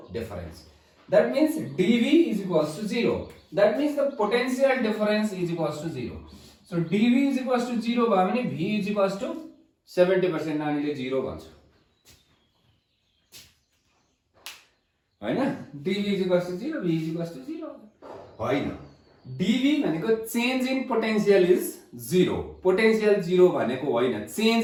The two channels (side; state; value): both; identical; correlation 1.00